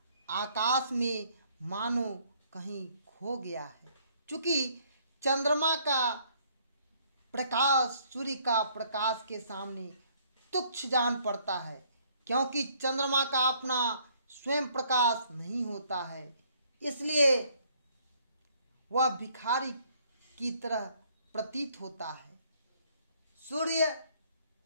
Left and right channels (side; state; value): both; inverted; correlation -0.64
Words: आकाश में मानो कहीं खो गया है। चूंकि चंद्रमा का प्रकाश सूर्य का प्रकाश के सामने तुच्छ जान पड़ता है, क्योंकि चंद्रमा का अपना स्वयं प्रकाश नहीं होता है, इसलिए वह भिखारी की तरह प्रतीत होता है। सूर्य